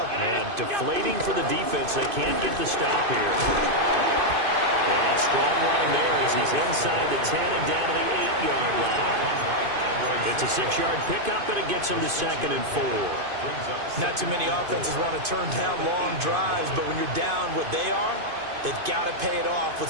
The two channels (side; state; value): left; late; 2.5 ms